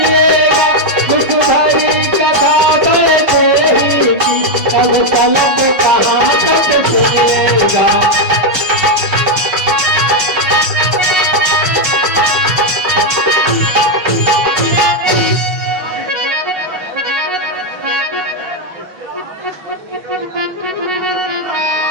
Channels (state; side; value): late; left; 5.4 ms